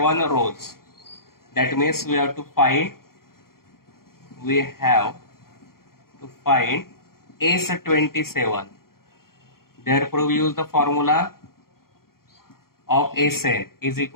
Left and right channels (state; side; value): late; right; 0.93 ms